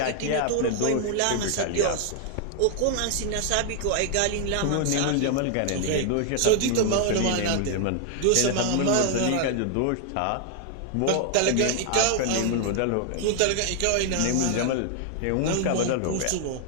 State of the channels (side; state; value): both; different; correlation 0.00